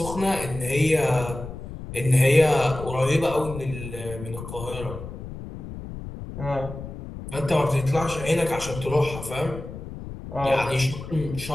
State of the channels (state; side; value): noise; left; rumble, 10 dB below the sound